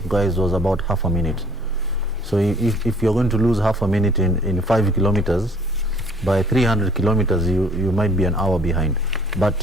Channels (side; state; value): both; normal; correlation 0.56